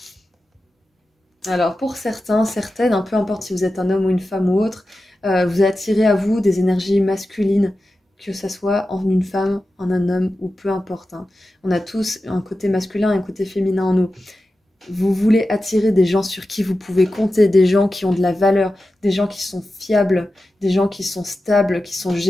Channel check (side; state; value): both; normal; correlation 0.93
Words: Alors, pour certains, certaines, peu importe si vous êtes un homme ou une femme ou autre, vous attirez à vous des énergies masculines, que ce soit en une femme, en un homme ou peu importe. Hein. On a tous un côté masculin et un côté féminin en nous. Vous voulez attirer des gens sur qui vous pouvez compter, des gens qui ont de la valeur, des gens qui sont fiables, des gens qui sont stables, qui sont